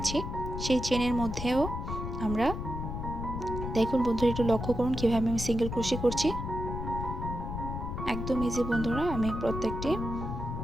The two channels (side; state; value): left; noise; rumble, 5 dB below the sound